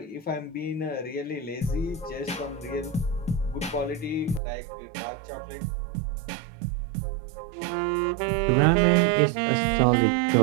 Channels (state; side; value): drops out; left; at 4.4 s